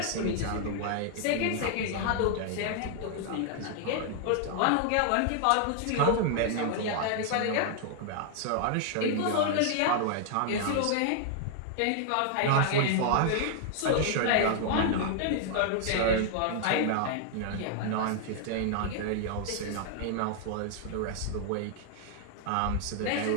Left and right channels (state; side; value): different; both; correlation 0.00